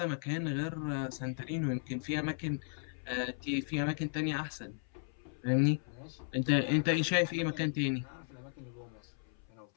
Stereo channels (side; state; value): right; silent; 54 dB below the other